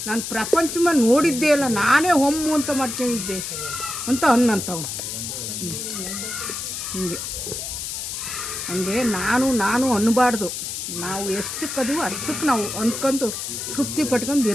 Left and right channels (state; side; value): noise; left; hiss, 5 dB below the sound